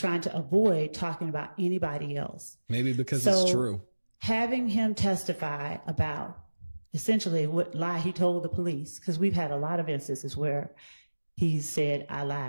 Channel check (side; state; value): both; inverted; correlation -1.00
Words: to avoid talking about anybody else. Maybe because it's true. Having him testify about essentially what lie he told the police, because we've had a lot of instances where he said, I